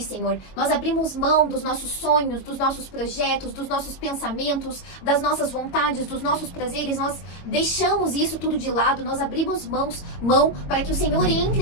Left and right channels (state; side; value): late; right; 22 ms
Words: Senhor. Nós abrimos mão dos nossos sonhos, dos nossos projetos, dos nossos pensamentos, das nossas vontades, dos nossos prazeres. Nós deixamos isso tudo de lado. Nós abrimos mão para que o Senhor